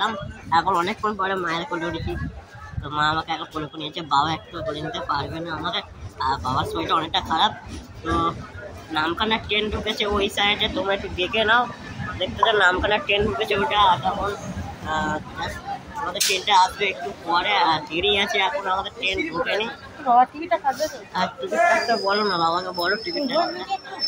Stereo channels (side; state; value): both; identical; correlation 1.00